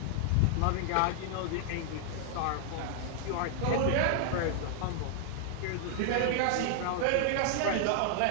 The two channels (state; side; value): different; both; correlation 0.00